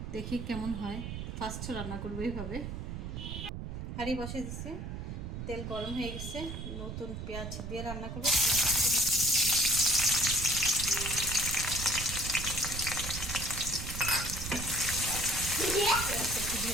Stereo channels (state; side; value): noise; right; rumble, 6 dB below the sound